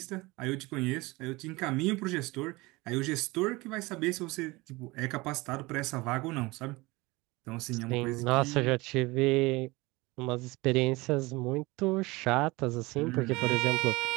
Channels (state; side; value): quieter; left; 22.7 dB